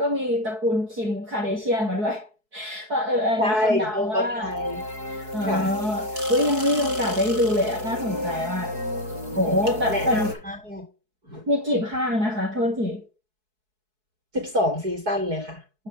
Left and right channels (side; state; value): left; late; 4.7 ms